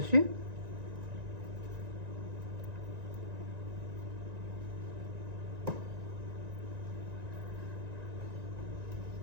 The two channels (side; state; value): left; late; 1.9 ms